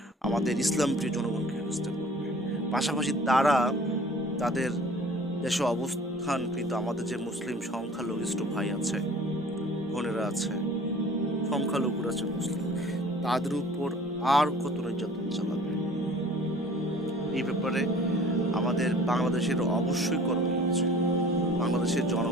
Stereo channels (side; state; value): both; normal; correlation 0.48